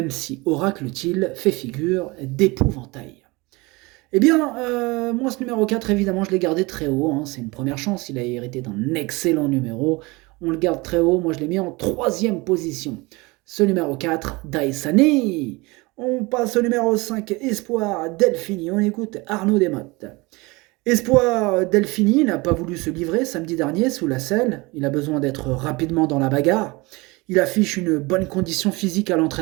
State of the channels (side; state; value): left; quieter; 24.3 dB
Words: si Oracle-t-il fait figure d'épouvantail. Eh bien, moi, ce numéro 4, évidemment, je l'ai gardé très haut. C'est une première chance. Il a hérité d'un excellent numéro. On le garde très haut. Moi, je l'ai mis en troisième position. Ce numéro 4, Daisani. On passe au numéro 5, Espoir Delphini. On écoute Arnaud Desmottes. Espoir Delphini n'a pas voulu se livrer samedi dernier sous la selle. Il a besoin d'être rapidement dans la bagarre. Il affiche une bonne condition physique à